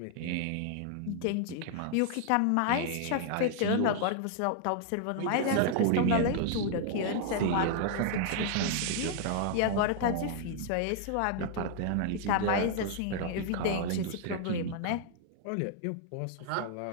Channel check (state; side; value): different; both; correlation -0.01